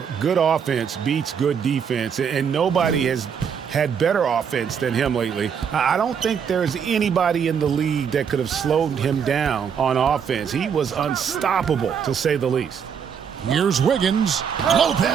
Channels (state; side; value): quieter; left; 7.2 dB